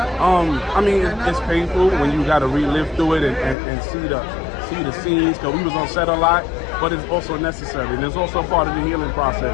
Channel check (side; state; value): right; drops out; at 3.6 s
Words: I mean, it's painful when you got to relive through it and see the scenes, because we was on set a lot, but it's also necessary, and it's also part of the healing